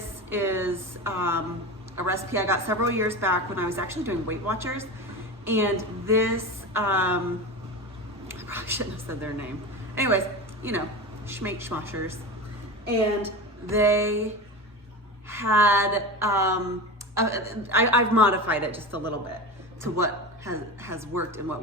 is a recipe I got several years back when I was actually doing Weight Watchers. And this, I probably shouldn't have said their name. Anyways, you know, Schmake Schmoshers. And they had, I've modified it just a little bit to what has worked and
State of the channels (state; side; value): normal; both; correlation 0.26